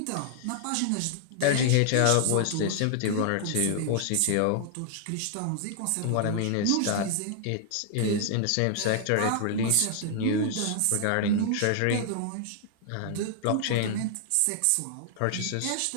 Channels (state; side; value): different; both; correlation -0.01